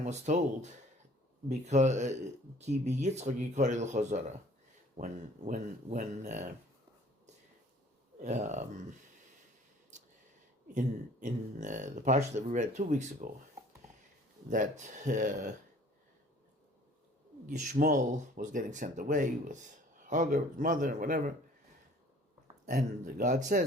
was told because when in the parsha that we read 2 weeks ago, that Yishmael was getting sent away with Hagar, his mother, and whatever, and God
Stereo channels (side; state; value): both; normal; correlation 0.52